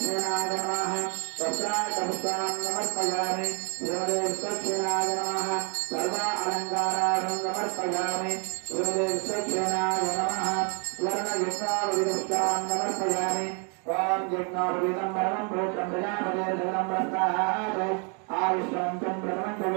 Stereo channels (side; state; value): left; quieter; 37.2 dB